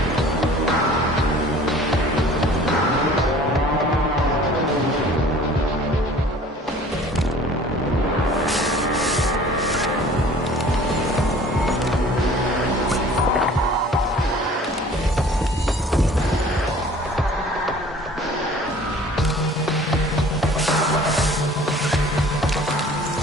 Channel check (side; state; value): both; normal; correlation 0.49